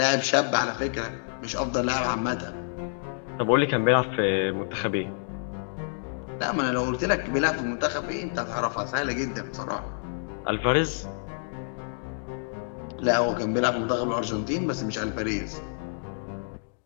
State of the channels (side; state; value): right; silent; digital silence